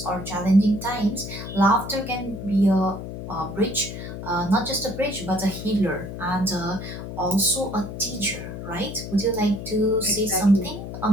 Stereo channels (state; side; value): noise; left; hum, 8 dB below the sound